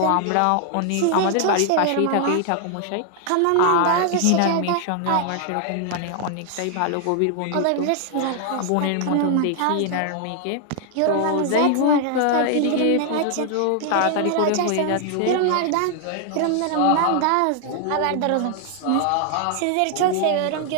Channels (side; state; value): both; different; correlation 0.00